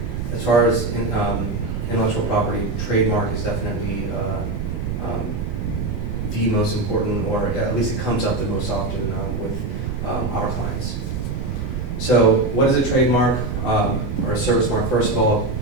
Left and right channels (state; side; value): noise; right; rumble, 4 dB below the sound